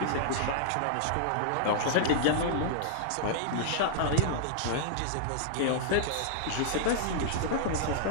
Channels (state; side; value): different; both; correlation -0.01